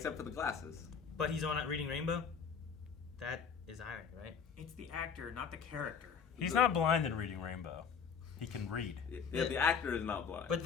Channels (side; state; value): right; quieter; 6.5 dB